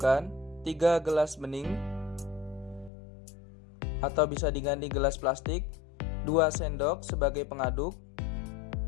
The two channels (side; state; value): right; drops out; at 2.9 s